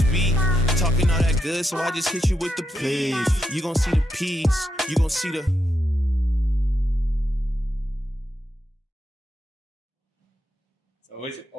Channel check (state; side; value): normal; both; correlation 0.82